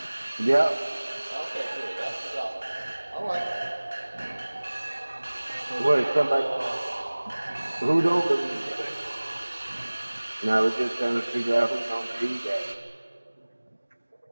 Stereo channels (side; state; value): both; inverted; correlation -1.00